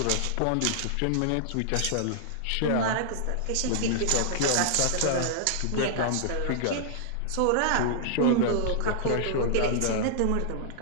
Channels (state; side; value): different; both; correlation -0.01